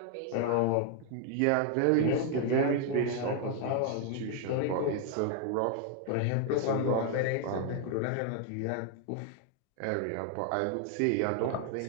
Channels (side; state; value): both; different; correlation 0.00